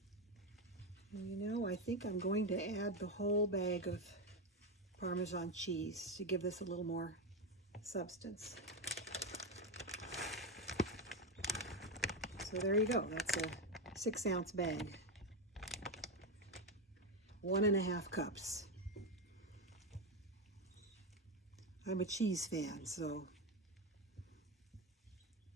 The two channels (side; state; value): both; normal; correlation 0.12